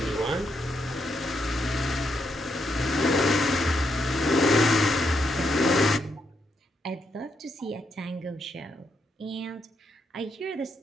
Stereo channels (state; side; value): normal; both; correlation 0.79